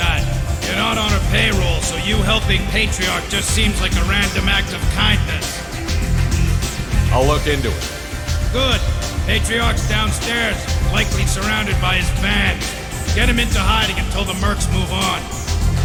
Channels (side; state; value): both; identical; correlation 1.00